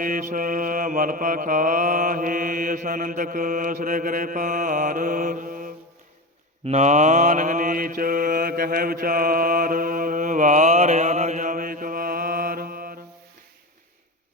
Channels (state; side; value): normal; both; correlation 0.22